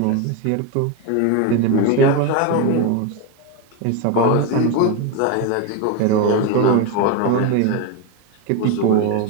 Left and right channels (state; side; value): different; both; correlation 0.03